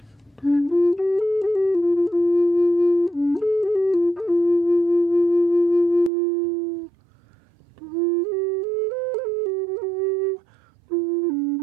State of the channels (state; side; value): drops out; left; at 6.1 s